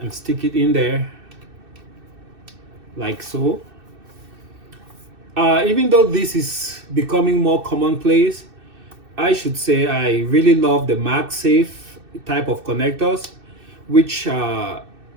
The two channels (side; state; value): left; late; 2.6 ms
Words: and stick it in there like so. Even though this is becoming more commonplace, I should say I really love the MagSafe type of connectors, which